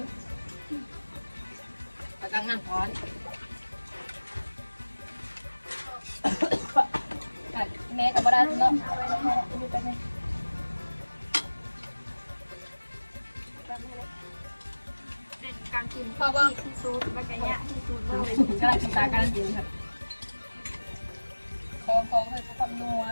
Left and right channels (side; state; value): both; inverted; correlation -1.00